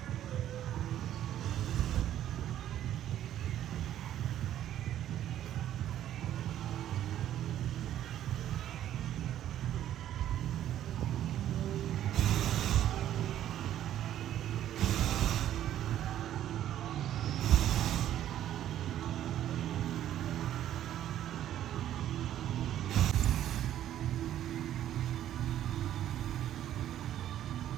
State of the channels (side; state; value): left; quieter; 11.7 dB